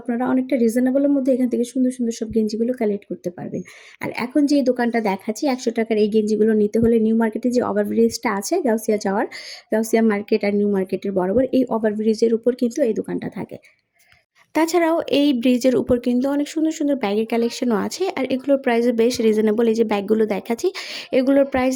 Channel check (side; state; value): both; identical; correlation 1.00